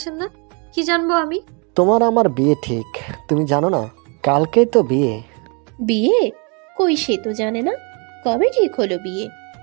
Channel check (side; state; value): left; quieter; 33.2 dB